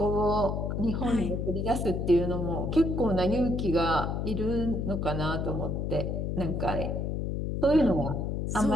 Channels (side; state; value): left; noise; hum, 1 dB below the sound